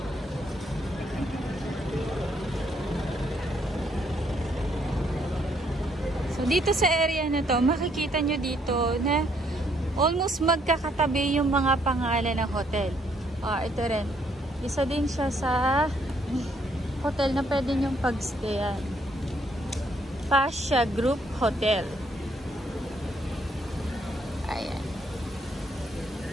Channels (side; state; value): both; normal; correlation 0.69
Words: So, dito sa area na to, makikita nyo dito na almost magkakatabi yung mga pangalan ng hotel. Ito rin. Isa din siya sa hotel na pwede nyong pag-stayan. Pasha Group Hotel. Ayan.